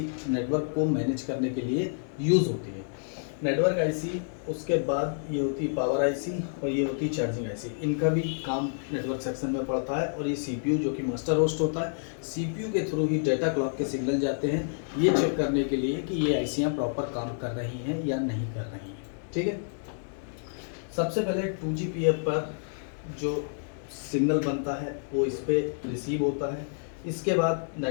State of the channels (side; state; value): right; silent; digital silence